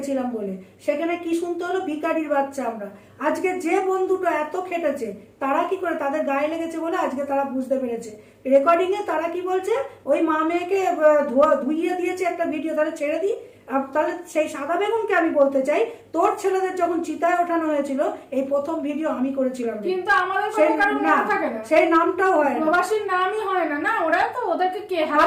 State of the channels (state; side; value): identical; both; correlation 1.00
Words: বলে। সেখানে কি শুনতে হলো? ভিখারির বাচ্চা আমরা। আজকে যে বন্ধুটা এত খেটেছে, তারা কি করে, তাদের গায়ে লেগেছে বলে আজকে তারা বুঝতে পেরেছে। রেকর্ডিং এ তারা কি বলছে, ওই মা মেয়েকে ধুইয়ে দিয়েছে একটা ভিডিও, তাহলে ছেড়ে দিই। তাহলে সেই সাদা বেগুনকে আমি বলতে চাই, তোর ছেলেদের যখন চিতায় ওঠানো হয়েছিল, এই প্রথম ভিডিও আমি করেছিলাম, কিন্তু আমাদের থাকে না, সেই নামটাও হয় না, প্রবাসীর নামই হয় না। না, ওরা তো ওদেরকে কে